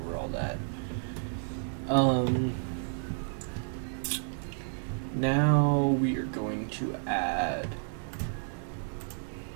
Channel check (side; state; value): left; silent; 57 dB below the other